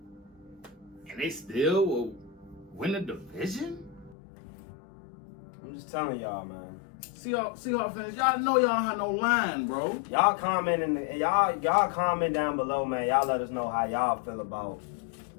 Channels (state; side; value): drops out; right; at 4.2 s